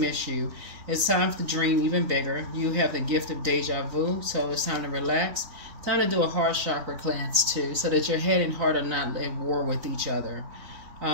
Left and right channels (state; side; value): late; left; 3.9 ms